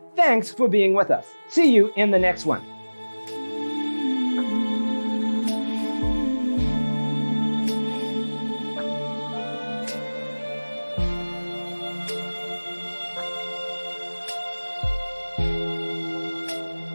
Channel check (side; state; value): both; inverted; correlation -1.00